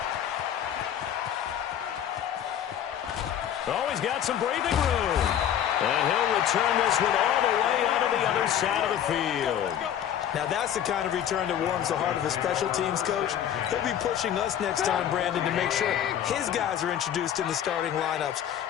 Oh, he's got some breathing room. And he'll return this one all the way onto the other side of the field. Now, that's the kind of return that warms the heart of a special teams coach. He'll be pushing us next time, Brandon, to make sure his guys are introduced in the starting lineups.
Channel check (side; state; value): right; quieter; 10.1 dB